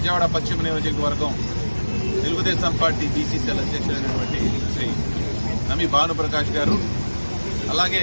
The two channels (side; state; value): both; inverted; correlation -1.00